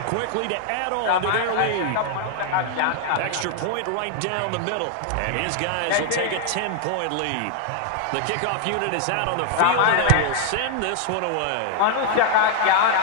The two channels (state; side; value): different; both; correlation 0.00